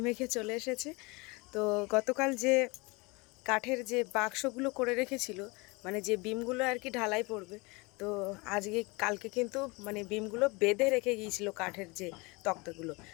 মেখে চলে এসেছে। তো গতকাল যে কাঠের যে বাক্সগুলো করে রেখেছিল, মানে যে বিমগুলো আর কি ঢালাই পড়বে, তো কালকে কিন্তু মানে বিমগুলো বেঁধে রেখে গিয়েছিল কাঠের যে তক্তাগুলো,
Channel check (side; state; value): right; quieter; 26.4 dB